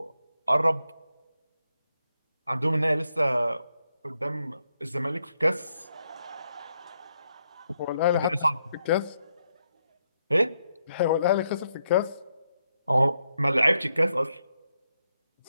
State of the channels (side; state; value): both; inverted; correlation -0.80